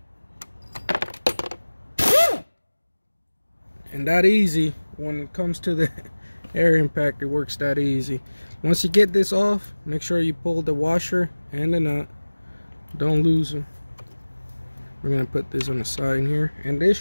And that easy. When it comes to the air impact, it works that easy. Once you get this off, make sure you pull the washer and the nut. Don't lose them. We're gonna put this on the side here, and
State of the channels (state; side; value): inverted; both; correlation -1.00